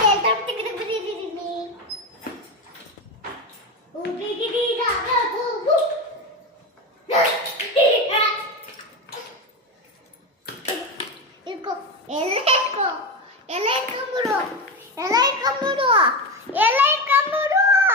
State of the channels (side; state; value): both; normal; correlation 0.18